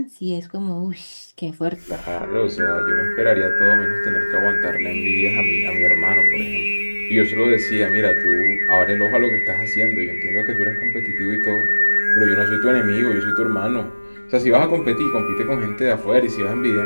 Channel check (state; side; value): inverted; both; correlation -1.00